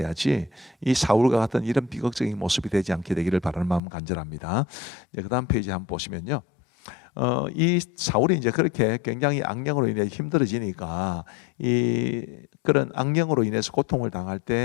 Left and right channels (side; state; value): right; drops out; at 3.8 s